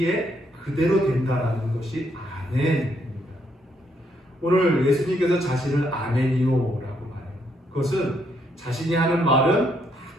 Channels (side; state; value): both; normal; correlation 0.73